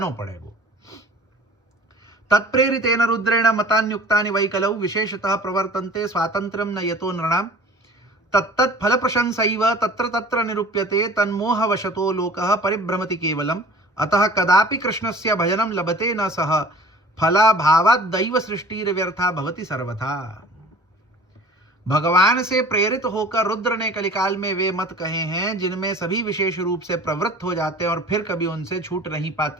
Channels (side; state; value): both; normal; correlation 0.45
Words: पड़ेगो। तत्प्रेरितेन रुद्रेण मतान्युक्तानि वै कलौ विशेषतः प्रवर्तन्ते स्वातंत्र्यं न यतो नृणां तत्तत् फल प्रशंसैव तत्र तत्र निरूप्यते तन्मोहवशतो लोकः परिभ्रमति केवलम् अतः कदापि कृष्णस्य भजनं लभते न सह फलाभावात् दैव सृष्टिर्व्यर्था भवति सर्वथा। भगवान से प्रेरित होकर रुद्र ने कलिकाल में वे मत कहे हैं जिनमें सभी विशेष रूप से प्रवृत्त हो जाते हैं और फिर कभी उनसे छूट नहीं